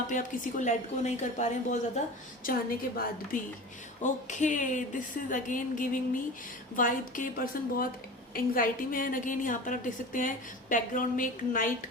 पे आप किसी को लेट गो नहीं कर पा रहे हैं बहुत ज़्यादा चाहने के बाद भी. Okay, this is again giving me vibe के पर्सन बहुत एंग्जाइटी में है. अगेन यहाँ पर आप देख सकते हैं बैकग्राउंड में एक नाइट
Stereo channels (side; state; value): both; normal; correlation 0.34